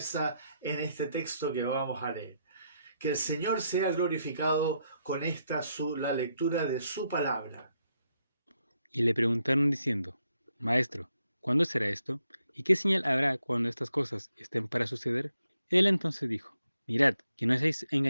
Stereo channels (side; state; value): both; inverted; correlation -0.79